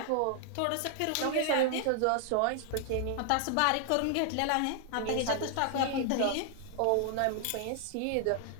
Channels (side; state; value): both; different; correlation 0.00